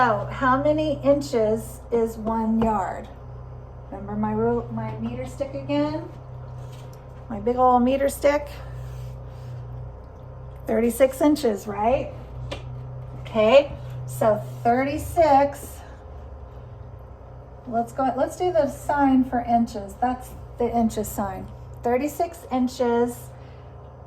how many inches is 1 yard? Remember my meter stick again? My big old meter stick? 36 inches, right? Okay, so 36. Let's do the sign for inches. That's the inches sign. 36 inches.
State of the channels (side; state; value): both; identical; correlation 1.00